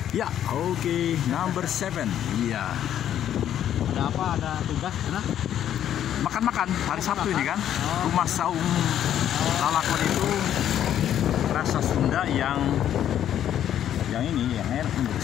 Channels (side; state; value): right; quieter; 10.6 dB